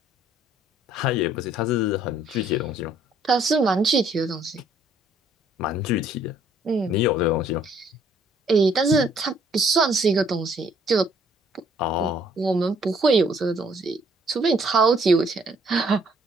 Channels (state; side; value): normal; both; correlation 0.63